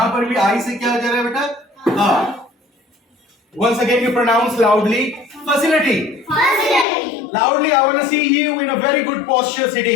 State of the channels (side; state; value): right; drops out; at 6.9 s